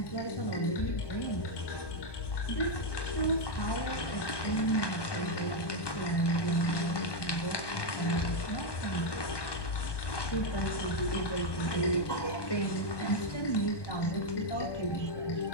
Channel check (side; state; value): right; late; 1.2 ms